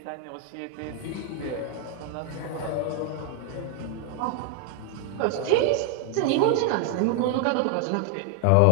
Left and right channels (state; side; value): different; both; correlation 0.00